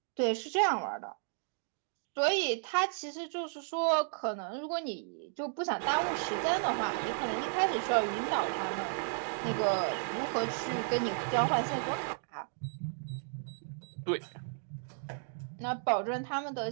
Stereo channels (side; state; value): left; silent; digital silence